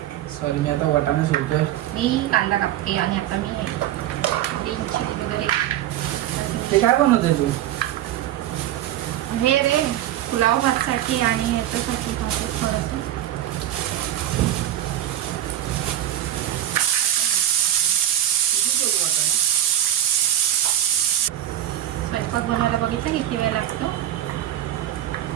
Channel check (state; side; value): quieter; left; 12.7 dB